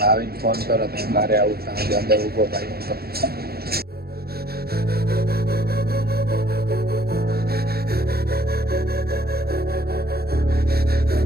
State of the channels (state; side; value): late; left; 0.45 ms